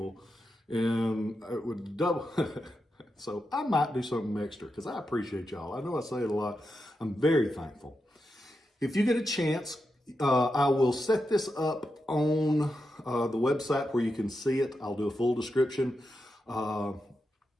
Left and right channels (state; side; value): normal; both; correlation 0.87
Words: and it would double. So I might do something extra because I appreciate y'all. I know I say it a lot. I'm very thankful. If you get a chance, I will set this up on the website where you can see it. I'll do a full description. Go